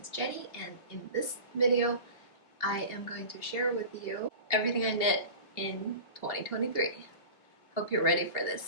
Jenny, and in this video I am going to share with you everything I knit in 2023. Hope you're ready for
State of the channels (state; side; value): late; right; 2.7 ms